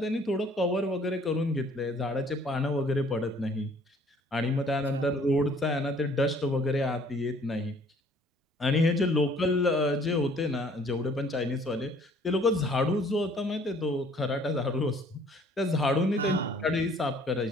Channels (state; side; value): normal; both; correlation 0.57